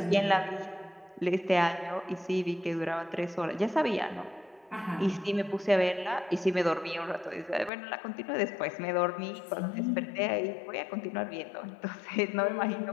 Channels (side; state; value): right; drops out; at 7.7 s